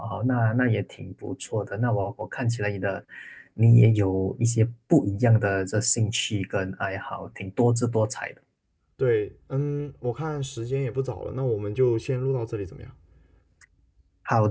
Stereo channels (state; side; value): identical; both; correlation 1.00